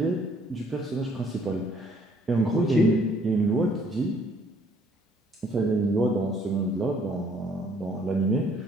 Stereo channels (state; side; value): normal; both; correlation 0.63